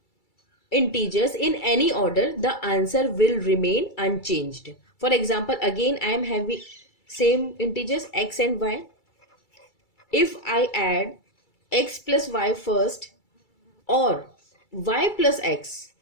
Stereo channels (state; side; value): late; right; 2.3 ms